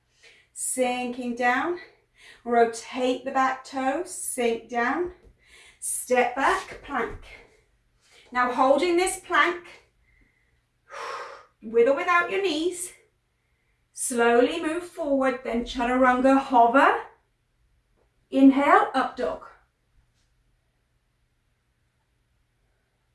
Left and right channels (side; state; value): both; identical; correlation 1.00